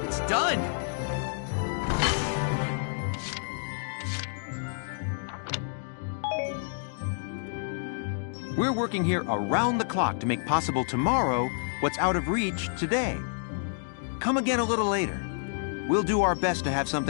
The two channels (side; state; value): right; silent; digital silence